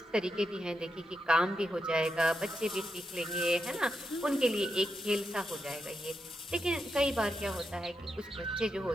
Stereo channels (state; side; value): normal; both; correlation 0.85